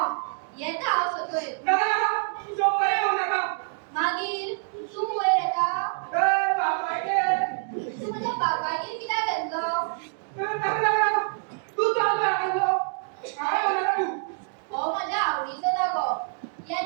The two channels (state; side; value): silent; left; digital silence